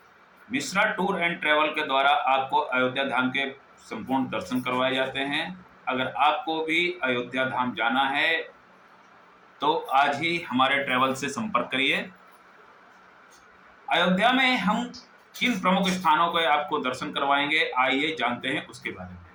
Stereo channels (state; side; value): identical; both; correlation 1.00